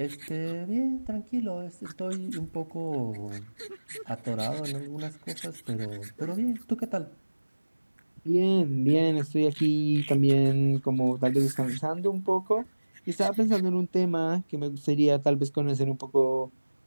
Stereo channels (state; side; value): inverted; both; correlation -1.00